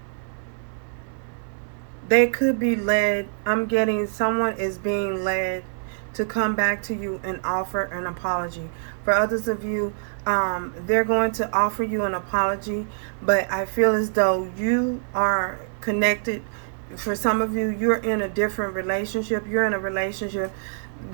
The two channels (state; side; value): silent; left; 62 dB below the other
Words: they could be led, I'm getting someone is being led to come back to you and offer an apology. For others of you, they're going to offer you an apology, but I feel as though you are connected. For some of you, you're in a different relationship. You're in a relationship